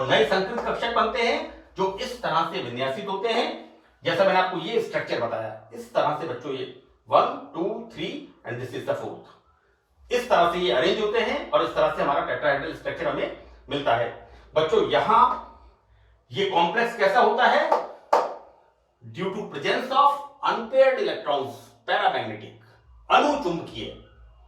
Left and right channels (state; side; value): identical; both; correlation 1.00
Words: नए संकृत कक्षक बनते हैं जो इस तरह से विन्यासित होते हैं, जैसा मैंने आपको ये स्ट्रक्चर बताया, इस तरह से बच्चों ये 1 2 3 and this is the 4th, इस तरह से ये अरेंज होते हैं और इस तरह से हमारा टेट्राहेड्रल स्ट्रक्चर हमें मिलता है। बच्चों यहां ये कॉम्प्लेक्स कैसा होता है, due to presence of unpaired electrons, paramagnetic, अनुचुंबकीय,